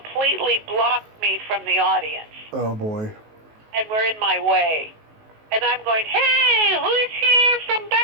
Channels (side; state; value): left; late; 19 ms